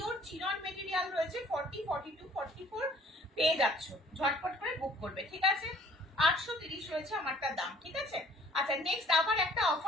চিনন মেটেরিয়াল রয়েছে, 40, 42, 44 পেয়ে যাচ্ছ, ঝটপট করে বুক করবে, ঠিক আছে? 830 রয়েছে আমারটার দাম, ঠিক আছে? আচ্ছা, নেক্সট আবার একটা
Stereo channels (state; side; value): normal; both; correlation 0.55